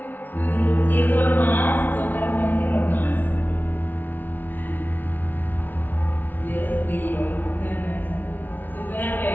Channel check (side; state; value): right; late; 0.085 ms